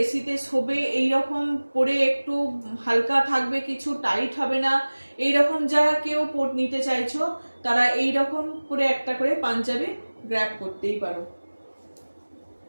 এসিতে শোবে, এইরকম পরে একটু হালকা থাকবে, কিছু টাইট হবে না, এইরকম যারা কেউ নিতে চাইছো তারা এইরকম করে একটা করে পাঞ্জাবি গ্র্যাব করতেই পারো।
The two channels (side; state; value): both; inverted; correlation -1.00